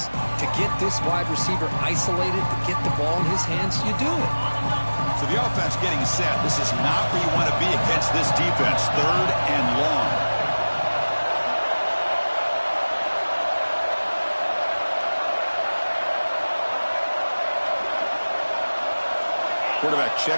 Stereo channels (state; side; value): inverted; both; correlation -1.00